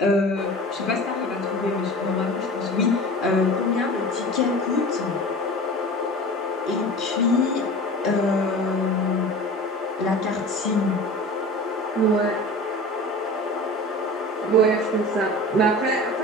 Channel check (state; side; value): normal; both; correlation 0.37